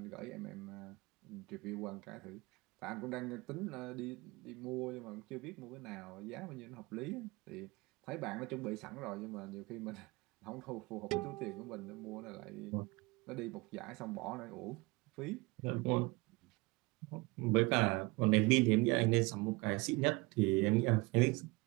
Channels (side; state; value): left; quieter; 24.7 dB